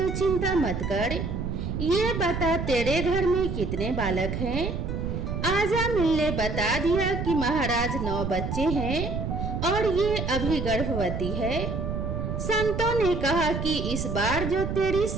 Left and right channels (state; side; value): noise; right; rumble, 3 dB below the sound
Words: चिंता मत कर। ये बता, तेरे घर में कितने बालक हैं? आजामिल ने बता दिया कि महाराज 9 बच्चे हैं और ये अभी गर्भवती है। संतों ने कहा कि इस बार जो तेरी